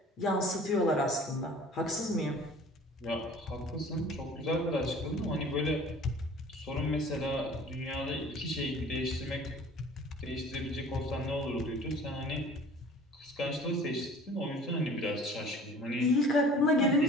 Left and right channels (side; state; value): both; normal; correlation 0.47